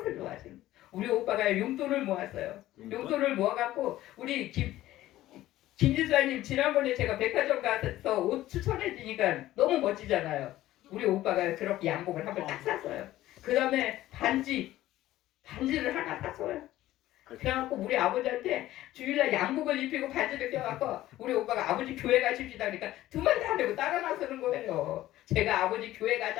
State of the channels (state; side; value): quieter; right; 15.0 dB